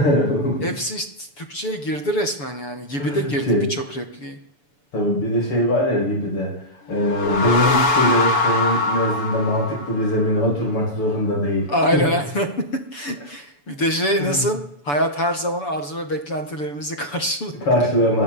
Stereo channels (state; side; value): late; right; 6.9 ms